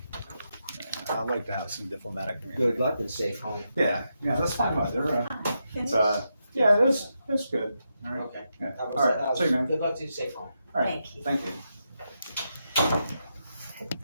I'd like to have some diplomatic community. good luck and safe home. Yeah, that's fine. Yeah, it was good. All right. Okay. Yeah. All right. See you, man. Good luck to you. Safe home. All right. Thank you. Thank you.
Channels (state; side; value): inverted; both; correlation -0.84